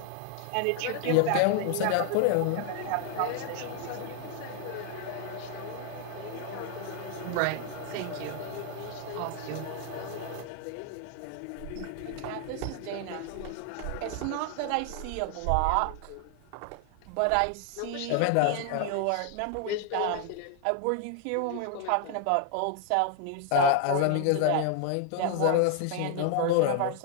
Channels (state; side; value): different; both; correlation 0.00